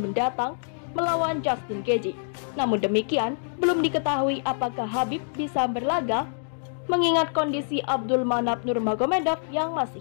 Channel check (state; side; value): silent; right; digital silence